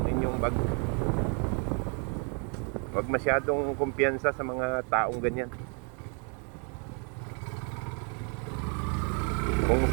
inyong bag. Huwag masyadong kumpiyansa sa mga taong ganyan. Kung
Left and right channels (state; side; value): quieter; left; 37.6 dB